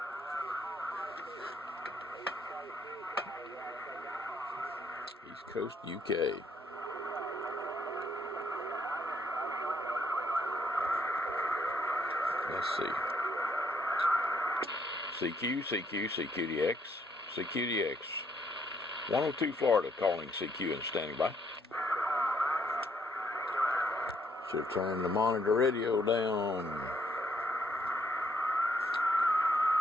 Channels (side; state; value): both; normal; correlation 0.70